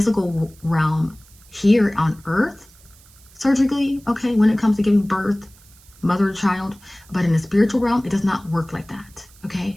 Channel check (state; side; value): noise; right; hiss, 26 dB below the sound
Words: realm here on Earth, surgically, okay, when it comes to giving birth, mother to child, but in the spiritual realm, it does not work like that,